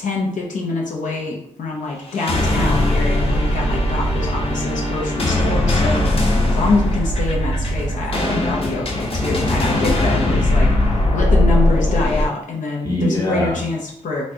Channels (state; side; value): normal; both; correlation 0.78